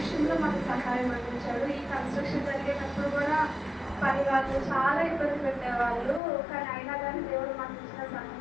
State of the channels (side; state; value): right; drops out; at 6.2 s